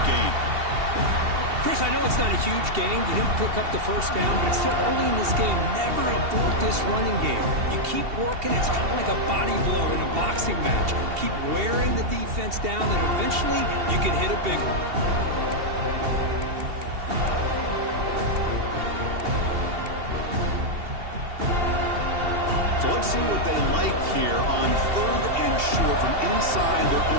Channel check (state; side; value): late; left; 2.7 ms